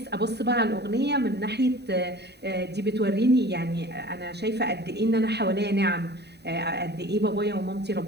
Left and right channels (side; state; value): left; late; 0.48 ms